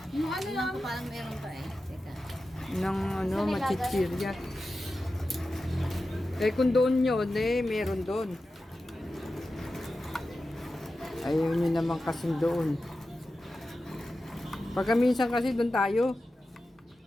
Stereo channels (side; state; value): both; normal; correlation 0.93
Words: Yung ano lang. Ko parang meron pa eh. Teka. Ng ano, machichirya. Eh kung doon yun, eh meron doon. Ayaw nyo naman kasing doon. Pagka minsan kasi doon tayo.